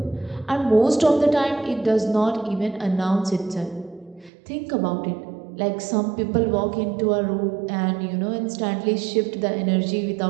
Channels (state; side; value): drops out; left; at 4.3 s